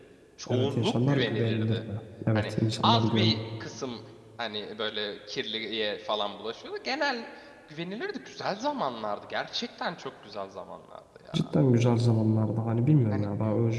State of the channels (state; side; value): identical; both; correlation 1.00